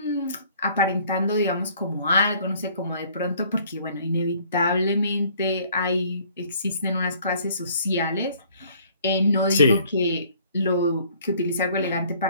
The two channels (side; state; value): both; inverted; correlation -0.58